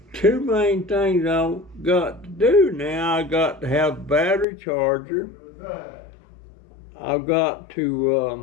two main things I've got to do now. I got to have a battery charger. I've got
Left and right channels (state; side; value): drops out; right; at 4.5 s